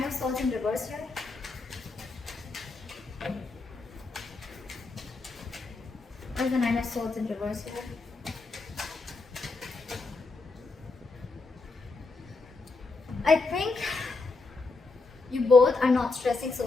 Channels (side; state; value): right; quieter; 3.8 dB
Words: of Swords in reverse here? Why is the Nine of Swords in reverse here? I think you both are not stressing so